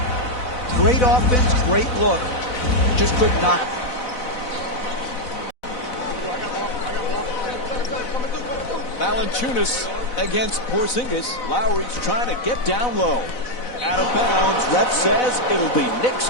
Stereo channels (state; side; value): late; right; 4.0 ms